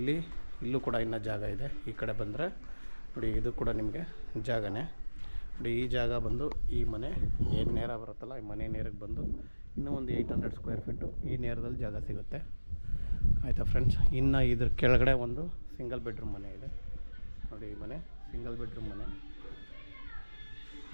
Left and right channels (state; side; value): inverted; both; correlation -1.00